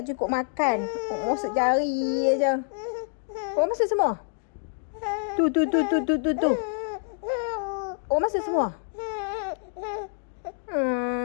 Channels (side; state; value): right; silent; digital silence